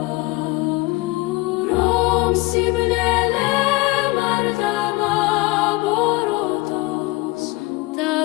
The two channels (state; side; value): quieter; right; 21.8 dB